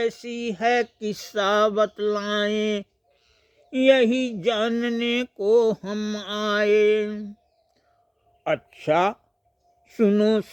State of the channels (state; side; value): identical; both; correlation 1.00